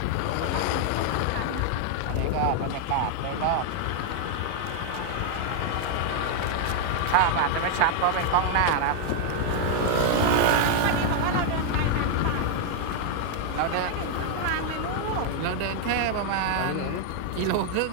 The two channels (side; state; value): both; different; correlation 0.00